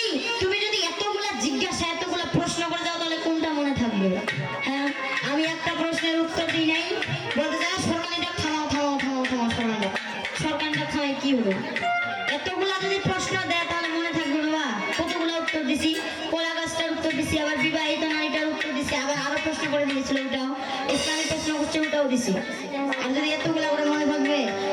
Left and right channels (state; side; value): identical; both; correlation 1.00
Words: যদি এতগুলা জিজ্ঞাসা এতগুলা প্রশ্ন করে যাও তাহলে কোনটা মনে থাকবে? হ্যাঁ আমি একটা প্রশ্নের উত্তর দিই নাই, বলতে চাই সরকারিটা থামাও থামাও থামাও থামাও, সরকারিটা থামাই কি হলো? এতগুলা যদি প্রশ্ন দেয় তাহলে মনে থাকবে বাবা? কতগুলো উত্তর দিছি, কলা গাছটার উত্তর দিছি, আবার বিবাহিত নারীটার উত্তর দিছি, আবার আরো প্রশ্ন করে দিয়েছিল ওটাও, ইসলামিক প্রশ্ন করছে ওটাও দিছি। আর যদি এতগুলা করে মনে থাকবে,